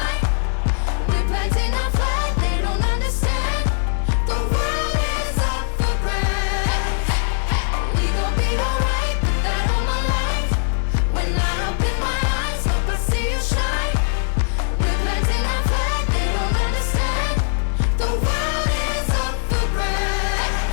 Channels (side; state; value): right; silent; digital silence